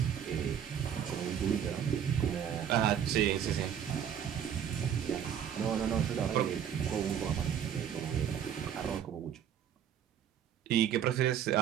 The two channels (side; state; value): left; quieter; 9.0 dB